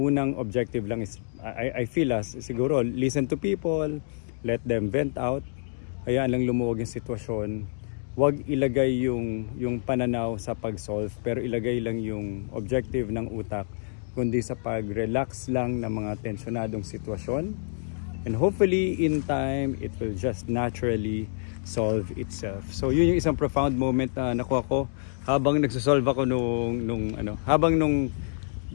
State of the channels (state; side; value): silent; right; digital silence